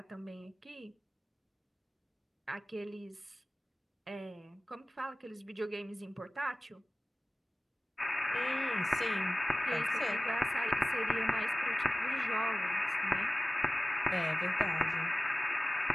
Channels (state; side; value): normal; both; correlation 0.97